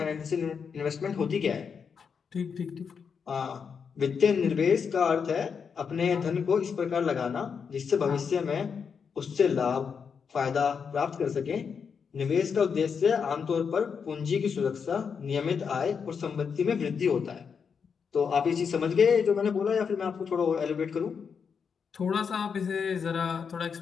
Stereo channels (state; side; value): quieter; right; 6.3 dB